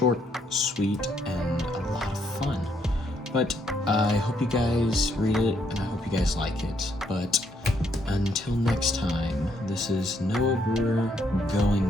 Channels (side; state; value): both; normal; correlation 0.73